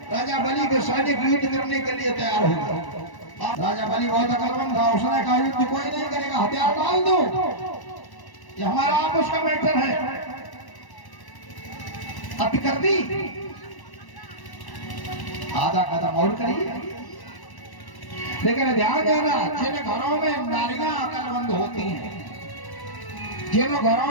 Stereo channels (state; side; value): late; right; 1.0 ms